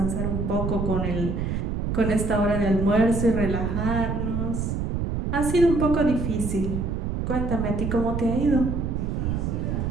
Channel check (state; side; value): noise; right; rumble, 1 dB below the sound